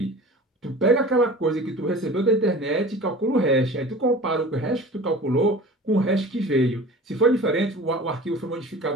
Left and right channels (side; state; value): both; normal; correlation 0.39